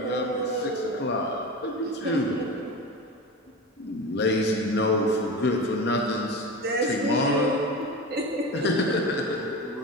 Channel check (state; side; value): normal; both; correlation 0.27